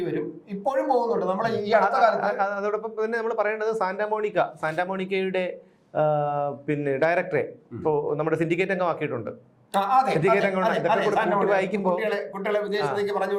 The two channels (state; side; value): identical; both; correlation 1.00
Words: വരും, ഇപ്പോഴും പോകുന്നുണ്ട്. നമ്മൾ ഈ അടുത്ത കാലത്ത് അതോടൊപ്പം തന്നെ നമ്മൾ പറയേണ്ടത് സാന്റാമോണിക്കയുടെ പിന്നെ ഡയറക്ടറെ ഇപ്പോൾ നമ്മുടെ സിൻഡിക്കേറ്റ് അംഗമാക്കിയിട്ടുണ്ട്. കുട്ടികളെ വിദേശത്തേക്ക് പറഞ്ഞു